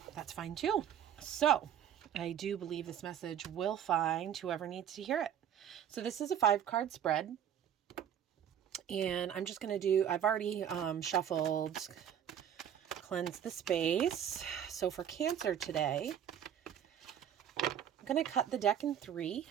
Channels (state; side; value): quieter; left; 9.5 dB